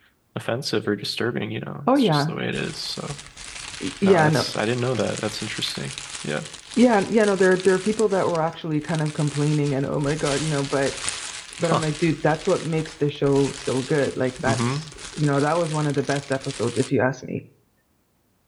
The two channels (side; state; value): both; identical; correlation 1.00